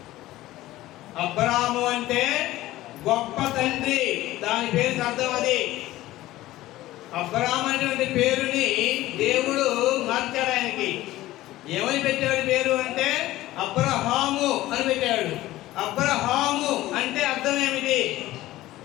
అబ్రాము అంటే గొప్ప తండ్రి, దాని పేరుకి అర్థం అది. అబ్రాము అనేటువంటి పేరుని దేవుడు మార్చాడు. ఆయనకి ఏమని పెట్టాడు పేరు అంటే అబ్రహాము అని పెట్టాడు. అబ్రహాము అంటే అర్థం ఏమిటి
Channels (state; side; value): quieter; right; 16.3 dB